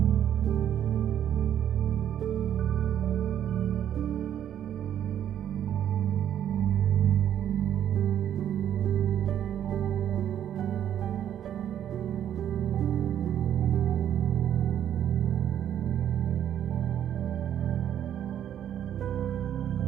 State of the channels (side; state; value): left; quieter; 10.2 dB